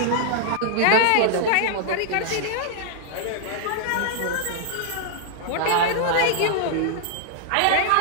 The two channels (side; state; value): both; different; correlation -0.01